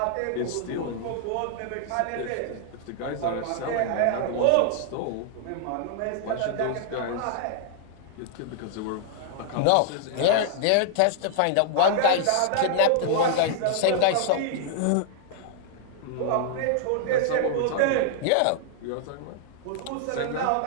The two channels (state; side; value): different; both; correlation -0.01